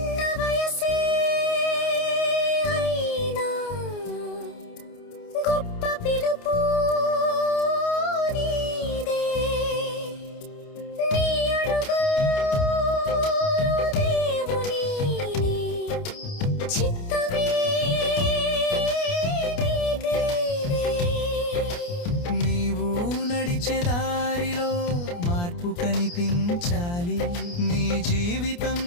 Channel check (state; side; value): late; right; 29 ms